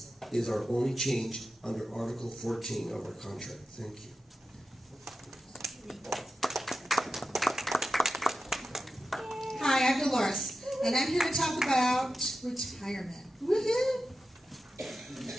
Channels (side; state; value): both; normal; correlation 0.92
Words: is our only change under Article 14 of our contract. Thank you. Hi, I'm Dolores, and I'm here to talk about retirement. Woohoo!